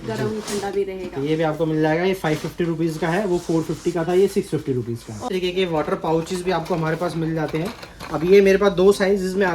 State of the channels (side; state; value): both; identical; correlation 1.00